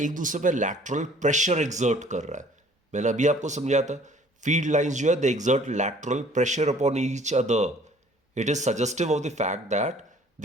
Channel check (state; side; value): normal; both; correlation 0.54